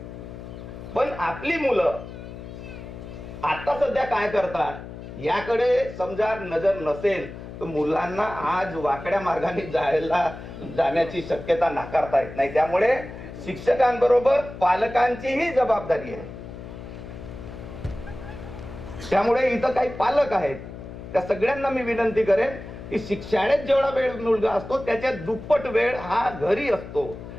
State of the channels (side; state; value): left; noise; hum, 12 dB below the sound